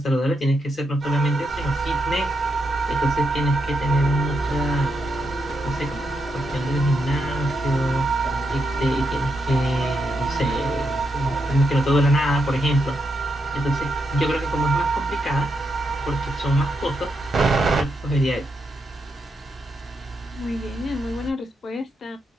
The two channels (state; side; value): normal; both; correlation 0.82